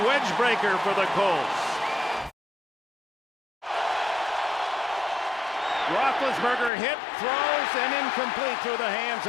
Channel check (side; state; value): right; drops out; at 6.7 s